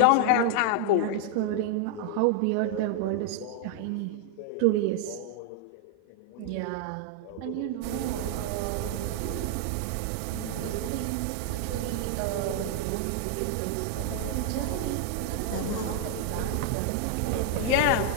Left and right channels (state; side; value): different; both; correlation 0.00